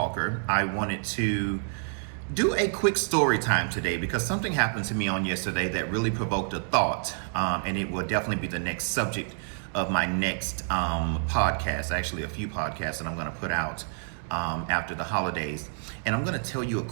I wanted to do a quick story time today because something happened to me on yesterday that really provoked a thought, and it will definitely be the next subject of my next podcast, actually a few podcasts that I'm going to put out after the holidays. And I'm going to tell you a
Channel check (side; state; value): left; silent; 59 dB below the other